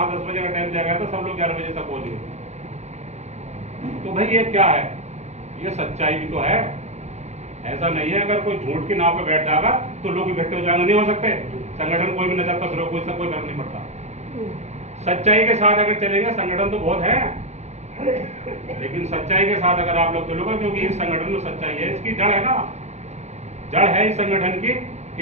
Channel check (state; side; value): late; left; 0.33 ms